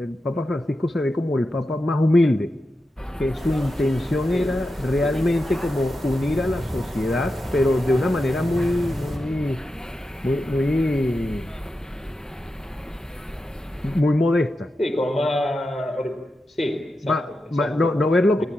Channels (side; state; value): both; normal; correlation 0.89